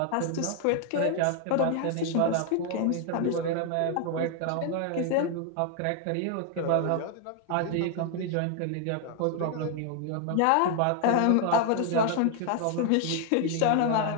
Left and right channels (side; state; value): both; different; correlation 0.00